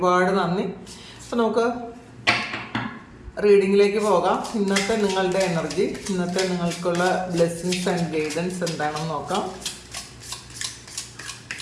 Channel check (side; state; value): both; identical; correlation 1.00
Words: നന്ദി. അപ്പോൾ നമുക്ക് റീഡിങ്ങിലേക്ക് പോകാം. ഇന്നത്തെ നിങ്ങളുടെ എനർജി, ഇന്നത്തെ നിങ്ങൾക്കുള്ള ബ്ലെസ്സിങ്സ് ആൻഡ് ഗൈഡൻസ് എന്താണെന്ന് നോക്കാം.